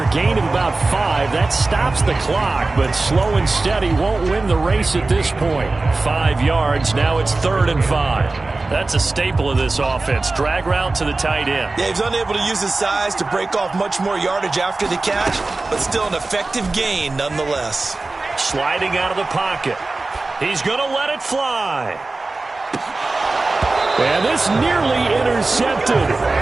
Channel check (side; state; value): left; quieter; 3.4 dB